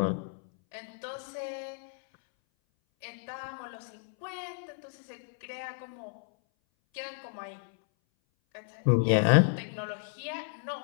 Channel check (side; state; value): right; silent; 56 dB below the other